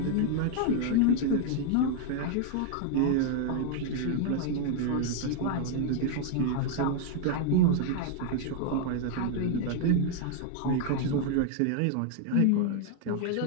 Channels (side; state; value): both; different; correlation 0.00